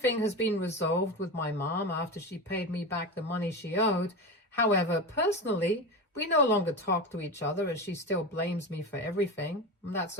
has been resolved with my mom after she paid me back the money she owed. However, personally, we no longer talk to each other as she still blames me for everything. That's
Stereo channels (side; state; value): both; normal; correlation 0.23